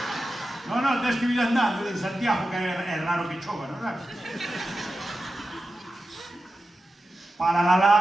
Non, tens que vir andando de Santiago, que é raro que chova, non é? Para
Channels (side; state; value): both; normal; correlation 0.92